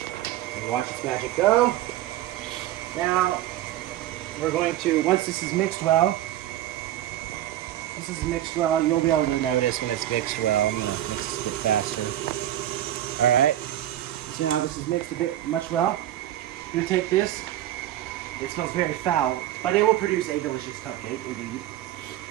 And watch its magic go. Now, we're going to, once this is mixed well, you'll be able to notice when it's mixed well. I'm going to mix this a bit faster. Alright. So now this is mixed much well. I'm going to take this. It smells very foul, but it will produce a delicious cupcake, indeed.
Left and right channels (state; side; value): quieter; left; 13.0 dB